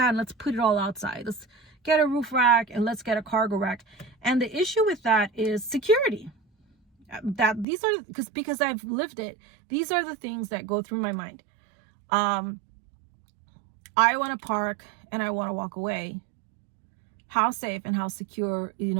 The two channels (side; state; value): left; drops out; at 7.7 s